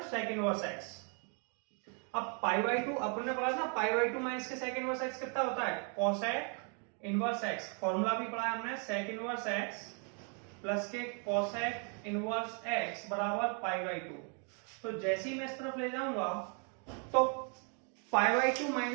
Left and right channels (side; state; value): left; quieter; 39.7 dB